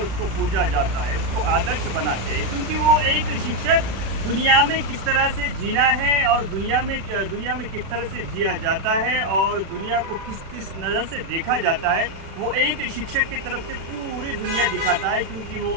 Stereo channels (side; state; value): left; late; 36 ms